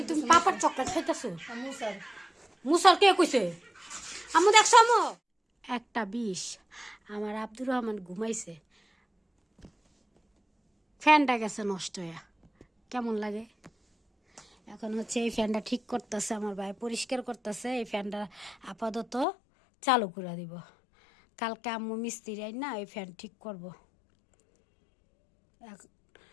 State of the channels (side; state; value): right; drops out; at 19.2 s